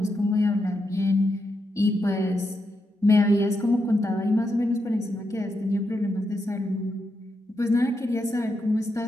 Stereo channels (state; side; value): normal; both; correlation 0.84